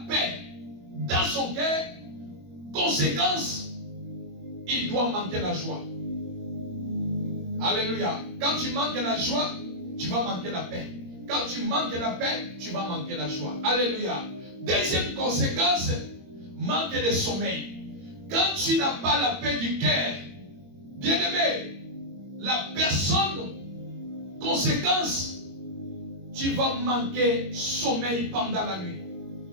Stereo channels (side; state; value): left; late; 21 ms